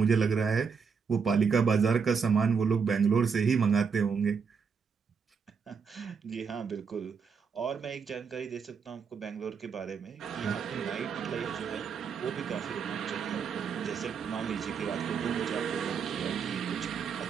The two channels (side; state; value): left; quieter; 6.0 dB